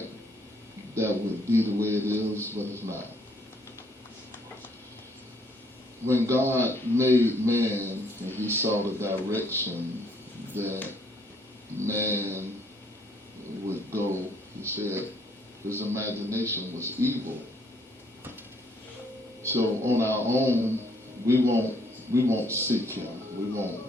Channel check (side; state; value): both; normal; correlation 0.66